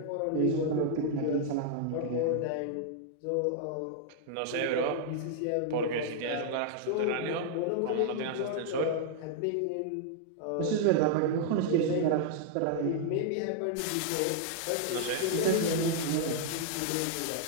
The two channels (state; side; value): different; both; correlation -0.01